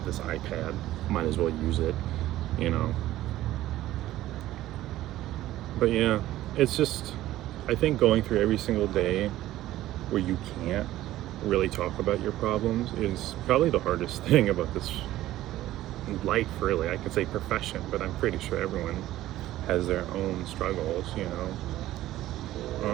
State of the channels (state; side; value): quieter; left; 14.8 dB